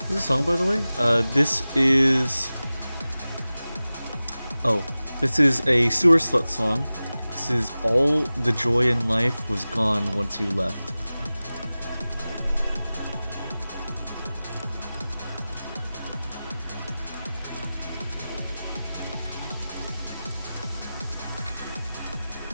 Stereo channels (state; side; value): inverted; both; correlation -0.97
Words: What's the song, by the way? This is a Sewer Slut song. This is All the Joy in Life Was Gone Once You Left.